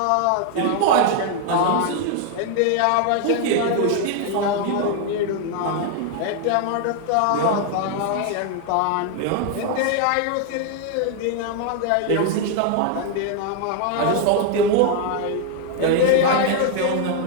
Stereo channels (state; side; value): different; both; correlation 0.00